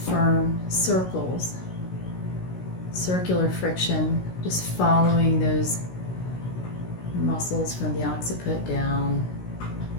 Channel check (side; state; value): right; late; 16 ms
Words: firm circles, circular friction, just following those muscles from the occiput down